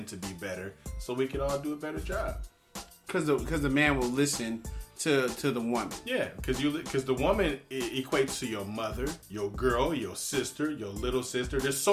to be better so we can all do a better job. Because the man will listen to the woman. Yeah, because the woman equates to your mother, your girl, your sister, your little sister. There's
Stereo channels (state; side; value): identical; both; correlation 1.00